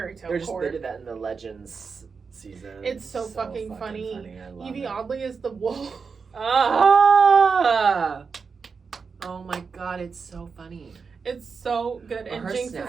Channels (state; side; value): quieter; left; 5.3 dB